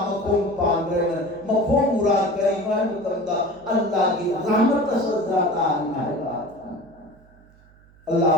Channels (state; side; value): noise; right; hum, 28 dB below the sound